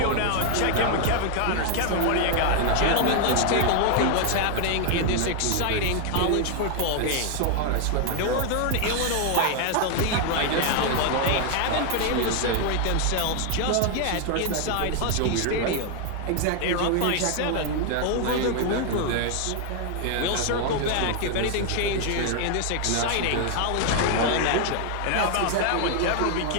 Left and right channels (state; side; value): different; both; correlation 0.00